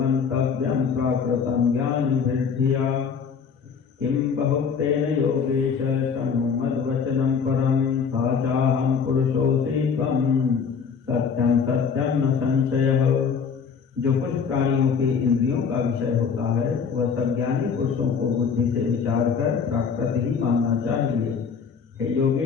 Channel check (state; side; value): quieter; right; 6.3 dB